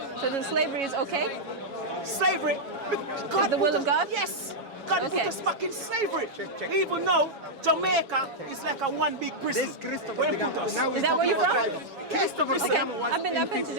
So then slavery is okay? Slavery is the will of God? Yes. God put us back in slavery. Even though Jamaica is like a one big prison. Where He put us. Is that where you're from? Okay. I've been to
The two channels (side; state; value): left; late; 7.3 ms